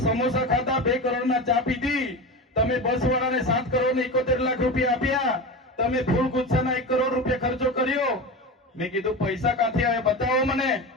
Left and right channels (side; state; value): both; normal; correlation 0.25